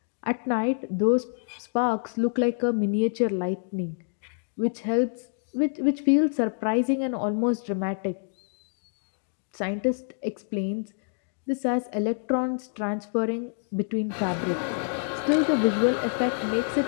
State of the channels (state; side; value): silent; right; digital silence